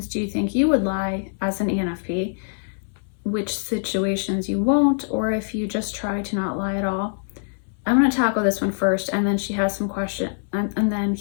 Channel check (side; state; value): right; silent; 63 dB below the other